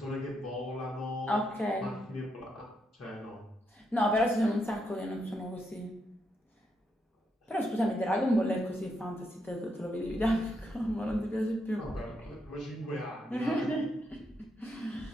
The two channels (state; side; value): normal; both; correlation 0.80